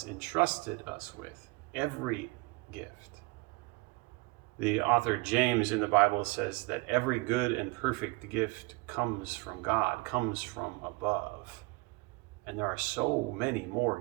entrusted us with, every gift. The author James in the Bible says that every good and perfect gift comes from God, comes from above. And there are so many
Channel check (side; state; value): left; quieter; 25.1 dB